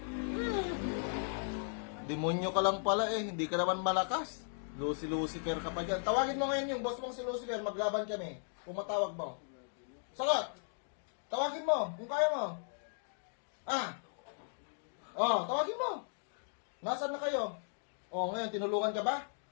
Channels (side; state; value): right; silent; digital silence